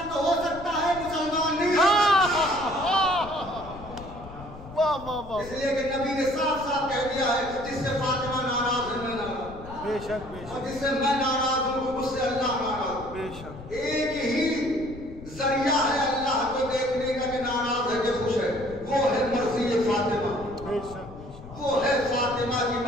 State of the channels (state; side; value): noise; left; rumble, 15 dB below the sound